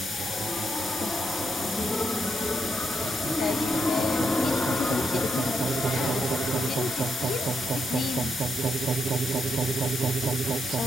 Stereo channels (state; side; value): normal; both; correlation 0.80